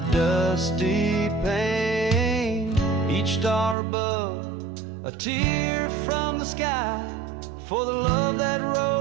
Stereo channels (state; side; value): drops out; left; at 3.8 s